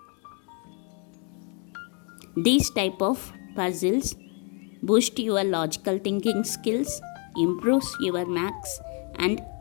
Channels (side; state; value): right; quieter; 37.5 dB